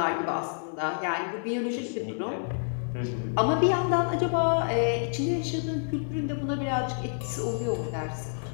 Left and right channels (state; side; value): silent; right; digital silence